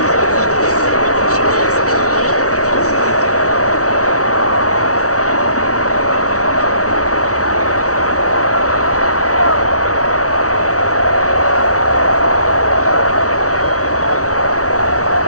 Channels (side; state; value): right; late; 0.66 ms